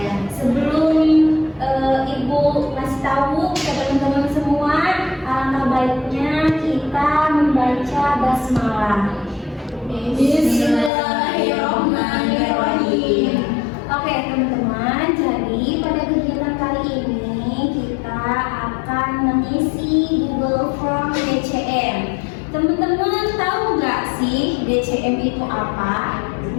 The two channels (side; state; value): right; drops out; at 10.9 s